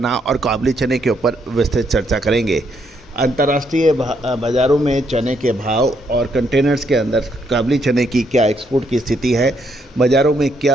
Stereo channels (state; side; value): normal; both; correlation 0.74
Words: और काबुली चने के ऊपर विस्तृत चर्चा करेंगे। अंतर्राष्ट्रीय बाज़ारों में चने के भाव और कंटेनर्स के अंदर काबुली चने की क्या एक्सपोर्ट की स्थिति है, बाज़ारों में